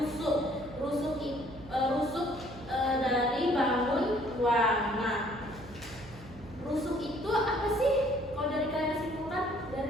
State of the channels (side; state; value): right; noise; hum, 18 dB below the sound